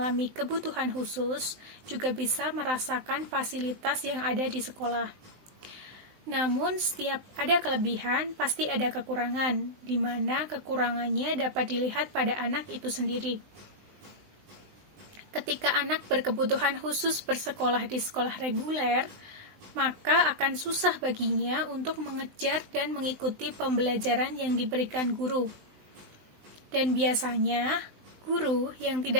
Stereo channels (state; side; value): late; left; 19 ms